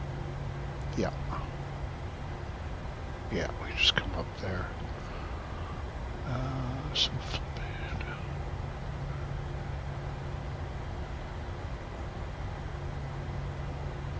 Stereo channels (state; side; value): identical; both; correlation 1.00